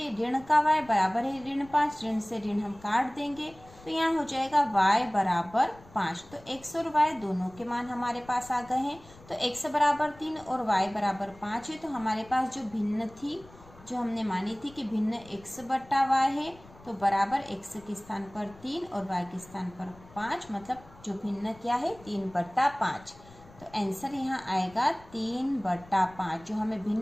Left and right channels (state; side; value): noise; left; rumble, 23 dB below the sound